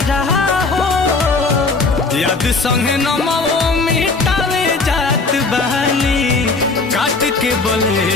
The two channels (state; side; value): quieter; right; 3.9 dB